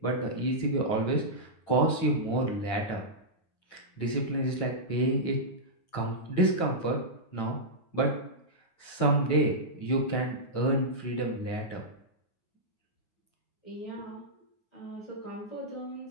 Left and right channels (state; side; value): late; right; 9.0 ms